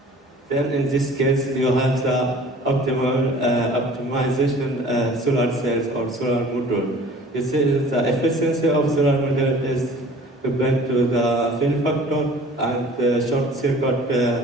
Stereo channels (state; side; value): normal; both; correlation 0.47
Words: Then in this case, you have the optimization solar cells or solar module. You see, the efficiency of solar model is depend to the fill factor and the short circuit